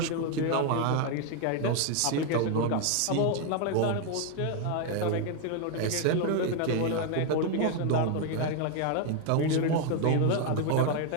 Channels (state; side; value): different; both; correlation 0.00